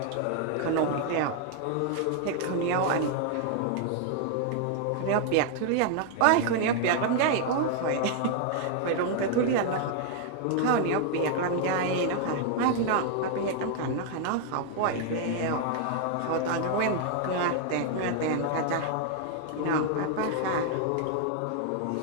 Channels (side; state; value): both; different; correlation 0.00